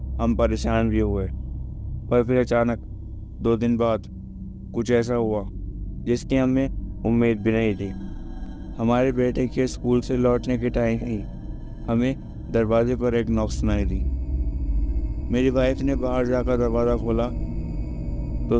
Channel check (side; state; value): both; identical; correlation 1.00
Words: हम परेशान भी हुए। पर फिर अचानक 2 दिन बाद कुछ ऐसा हुआ जिसकी हमें उम्मीद भी नहीं थी। हमारे बेटे के स्कूल से लौटने के टाइम ही हमें दरवाजे पर एक नॉक सुनाई दी। मेरी वाइफ ने बाहर जाकर दरवाज़ा खोला तो